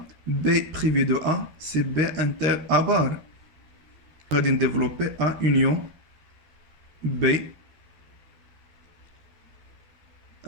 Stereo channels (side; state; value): left; late; 12 ms